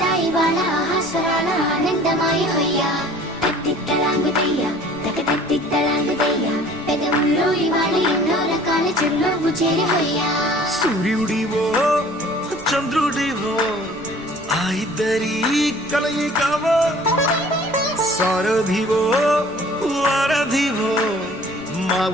ఇవాళ ఆహాస్వరాల ఆనందమాయ హొయ్యా. తెత్తిద్దలాంగుతయ్యా తెగతెత్తిద్దలాంగుతయ్యా, పెదవుల్లో ఇవాళ ఎన్నో రకాల చిరునవ్వు చేరి హొయ్యా. సూర్యుడివో చంద్రుడివో ఆ ఇద్దరి కలయికవో, సారథివో వారధివో మా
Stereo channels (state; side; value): noise; right; rumble, 23 dB below the sound